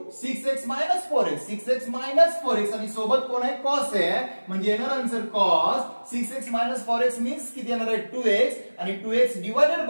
6x minus 4x 6x minus 4x आणि सोबत कोण आहे कॉस आहे म्हणजे येणार answer cos 6x minus 4x means किती येणार आहे 2x आणि 2x डिवाइडेड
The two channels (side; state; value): both; inverted; correlation -1.00